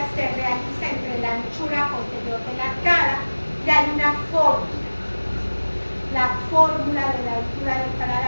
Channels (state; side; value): inverted; both; correlation -1.00